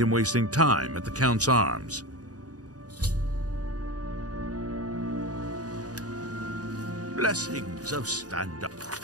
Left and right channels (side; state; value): left; late; 0.68 ms